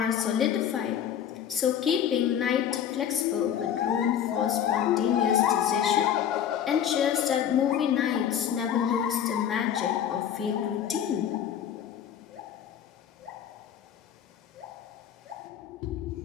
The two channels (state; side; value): quieter; right; 9.4 dB